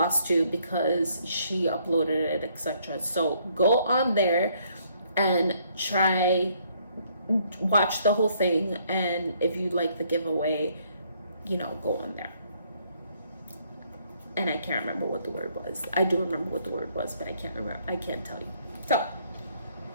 because she uploaded it, etc. So go on there and watch the whole thing, and if you like the giveaway, you know, go on there. And I can't remember what the word was. I do remember what the word was, but I can't remember. I can't tell you. So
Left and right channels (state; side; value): inverted; both; correlation -0.67